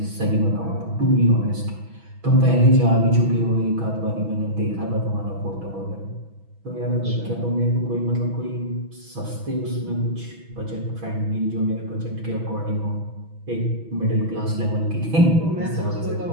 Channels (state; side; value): late; left; 6.1 ms